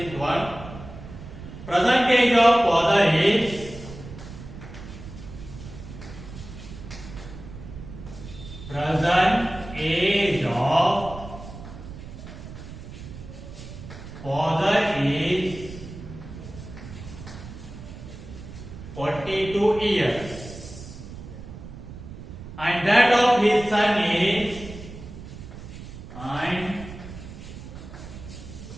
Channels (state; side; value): noise; right; rumble, 13 dB below the sound